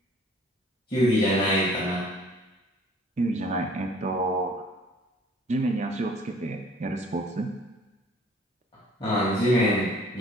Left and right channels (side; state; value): both; normal; correlation 0.54